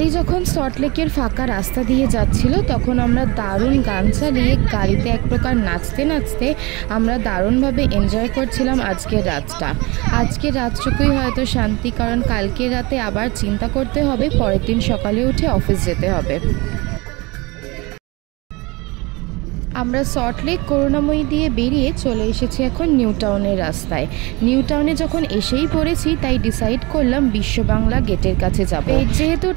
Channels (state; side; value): quieter; left; 24.9 dB